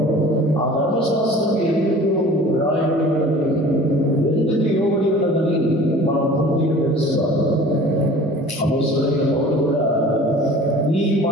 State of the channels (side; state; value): both; normal; correlation 0.44